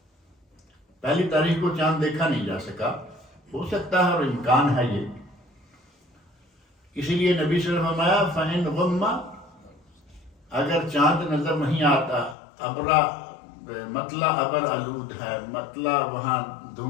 پہلی تاریخ کو چاند دیکھا نہیں جا سکا، ہو سکتا ہے اور امکان ہے یہ، اسی لیے نبی صلی اللہ علیہ وسلم فرمایا فَإِنْ غُمَّ، اگر چاند نظر نہیں آتا، ابرا مطلع ابر آلود ہے، مطلع وہاں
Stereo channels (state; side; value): drops out; right; at 12.4 s